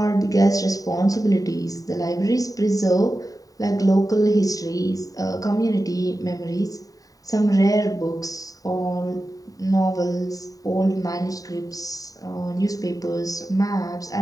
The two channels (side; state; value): right; late; 0.17 ms